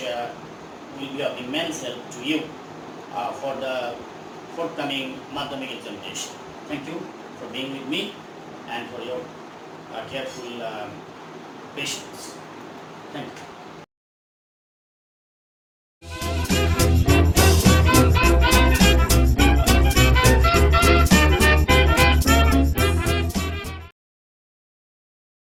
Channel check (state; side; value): identical; both; correlation 1.00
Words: will be of immense help to you for the forthcoming Madhyamik examination. Thank you for being with me and for your careful patience. Thank you.